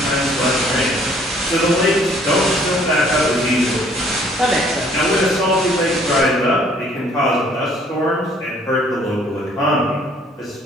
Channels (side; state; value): both; normal; correlation 0.60